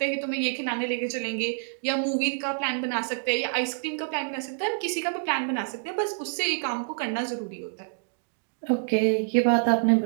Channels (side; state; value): left; silent; digital silence